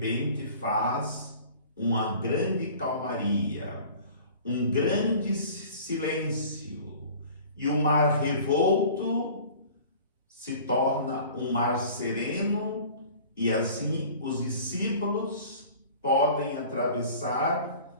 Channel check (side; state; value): both; inverted; correlation -0.45